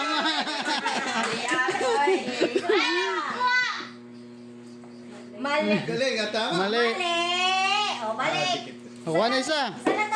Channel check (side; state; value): both; identical; correlation 1.00